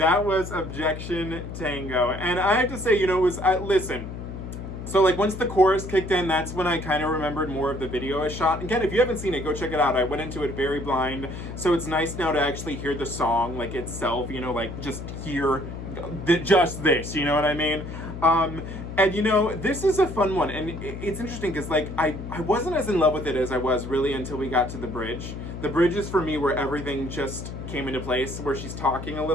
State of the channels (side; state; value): left; noise; hum, 9 dB below the sound